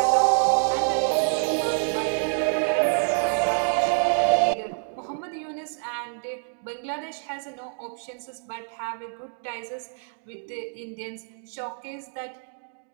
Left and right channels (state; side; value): silent; left; 55 dB below the other